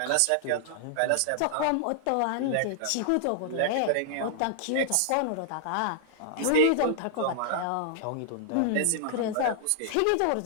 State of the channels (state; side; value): different; both; correlation -0.01